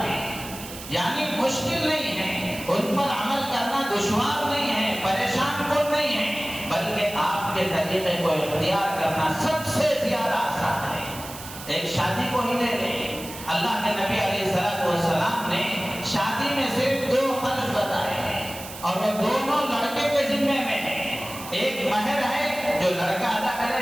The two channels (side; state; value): right; noise; hiss, 13 dB below the sound